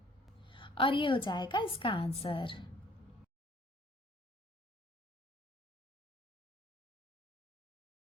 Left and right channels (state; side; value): normal; both; correlation 0.57